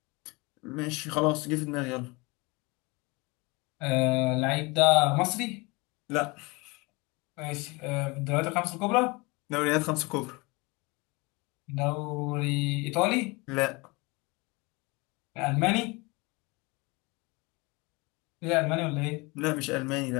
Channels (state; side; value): quieter; right; 25.9 dB